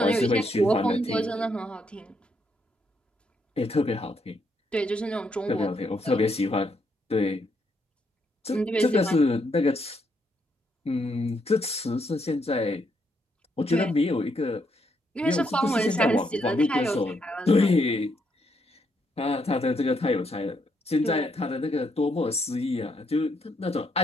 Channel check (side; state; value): both; normal; correlation 0.76